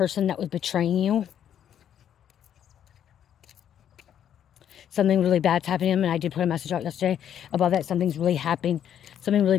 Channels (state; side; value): quieter; right; 9.7 dB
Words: that was betraying you. Something really bad's happening to them, and I did put a message out yesterday about that. Something's really happening. Something really